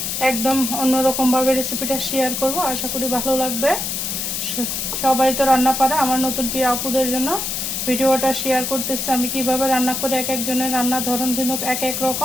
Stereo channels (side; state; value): left; noise; hiss, 2 dB below the sound